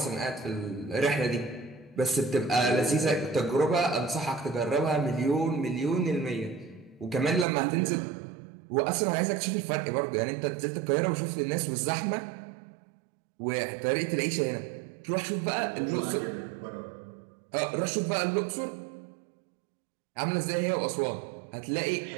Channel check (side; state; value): left; drops out; at 7.5 s